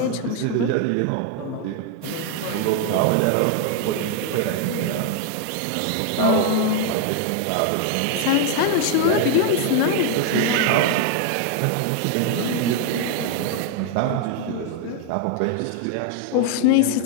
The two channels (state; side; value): different; both; correlation 0.01